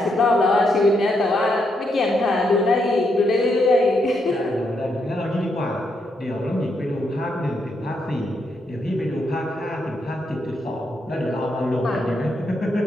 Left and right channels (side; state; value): both; normal; correlation 0.79